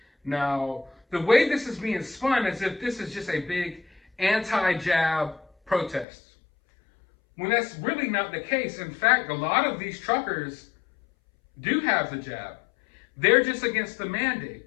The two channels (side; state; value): right; drops out; at 6.1 s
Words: Now, the way this is being spun as if this is just a big anti-jab protest, when that's really not the case. In fact, a lot of these truckers do have the jab. They're just against the